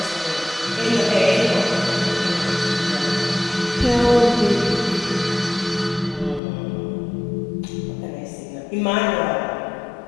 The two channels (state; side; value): drops out; right; at 6.4 s